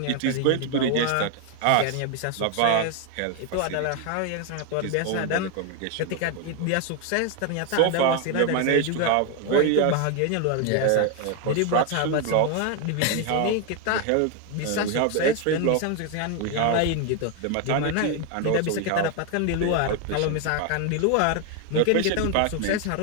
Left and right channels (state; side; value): different; both; correlation 0.01